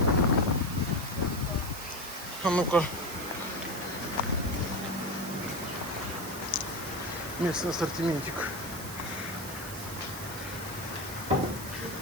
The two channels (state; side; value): noise; right; hiss, 10 dB below the sound